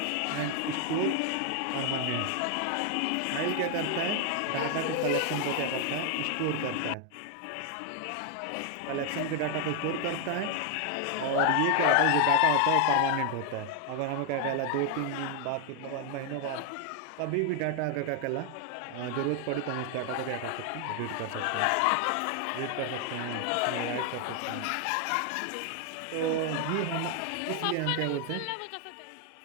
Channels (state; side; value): different; both; correlation 0.00